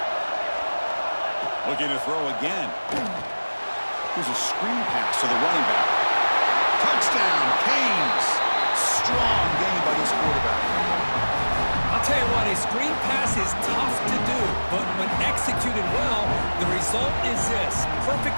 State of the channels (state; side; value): inverted; both; correlation -1.00